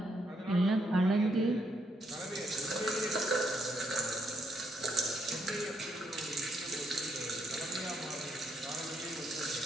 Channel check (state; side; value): normal; both; correlation 0.75